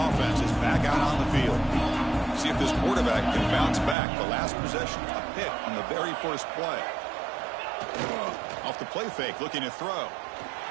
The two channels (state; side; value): drops out; left; at 4.0 s